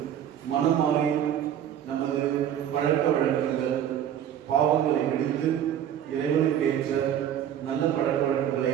மனம் மாறி நமது பழக்க வழக்கங்கள் பாவங்களை விடுத்து இறைவனுக்கு ஏற்ற நல்ல பழக்க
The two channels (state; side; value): quieter; left; 10.1 dB